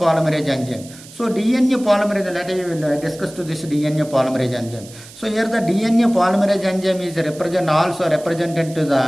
enzyme. So DNA polymerase, let us discuss to this DNA polymerase enzyme. So here the DNA polymerase enzyme is represented to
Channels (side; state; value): right; noise; hiss, 19 dB below the sound